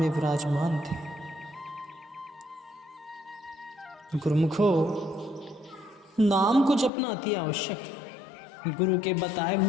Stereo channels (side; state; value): right; drops out; at 6.9 s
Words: विराजमान थे। गुरुमुखो, नाम को जपना अति आवश्यक है। गुरु के बताए